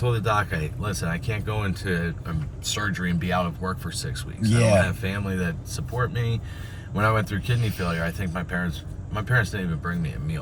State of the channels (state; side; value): identical; both; correlation 1.00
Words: the doc, "Hey, listen, I can't go into surgery and be out of work for 6 weeks. I don't have family that support me. When I went through kidney failure, I think my parents didn't even bring me a